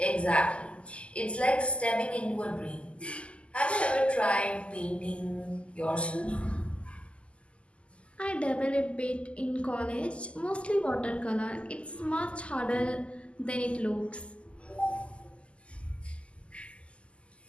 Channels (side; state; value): right; late; 0.056 ms